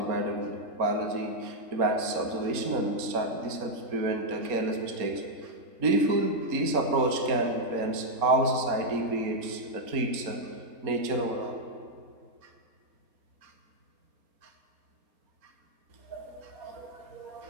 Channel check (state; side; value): late; left; 4.2 ms